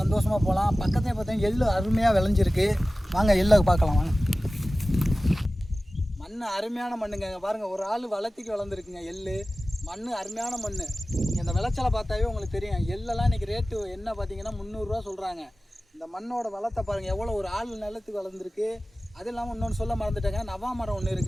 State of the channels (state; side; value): normal; both; correlation 0.96